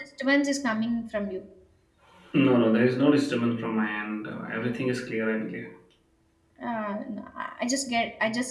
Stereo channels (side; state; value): both; identical; correlation 1.00